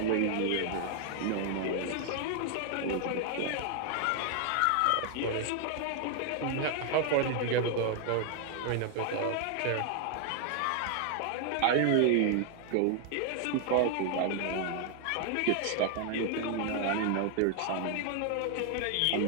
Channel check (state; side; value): different; both; correlation 0.00